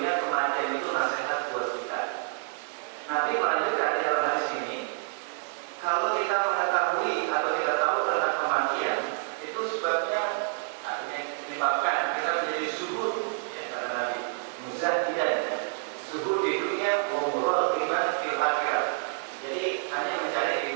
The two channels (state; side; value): silent; left; 59 dB below the other